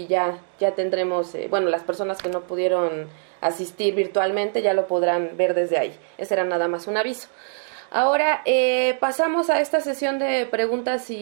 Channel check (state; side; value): silent; left; digital silence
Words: ya tendremos, bueno, las personas que no pudieron asistir virtualmente ya lo podrán ver desde ahí. Ese era nada más un aviso. Ahora pasamos a esta sesión de preguntas